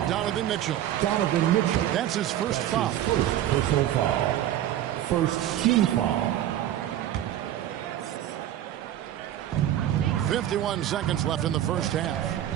Donovan Mitchell. That's his first foul. First personal foul. First team foul. 51 seconds left in the first half.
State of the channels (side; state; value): left; quieter; 12.1 dB